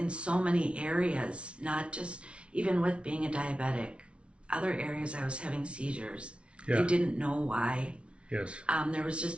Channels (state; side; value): late; left; 0.060 ms